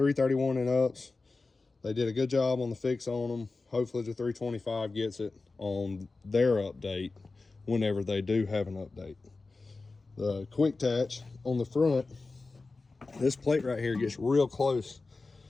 and ups. They did a good job on the fix on them. Hopefully the 325 gets it on their update whenever they do have an update. The quick attach on the front, this plate right here gets real close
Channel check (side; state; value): right; quieter; 3.7 dB